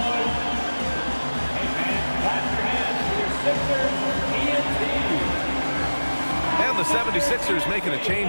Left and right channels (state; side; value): inverted; both; correlation -1.00